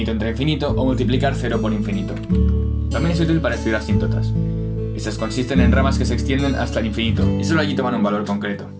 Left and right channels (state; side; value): identical; both; correlation 1.00